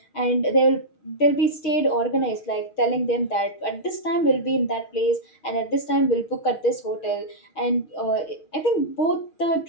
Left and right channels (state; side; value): late; right; 6.2 ms